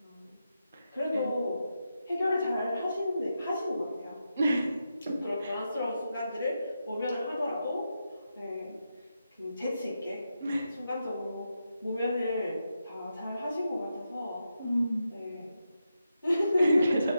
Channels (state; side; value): inverted; both; correlation -0.87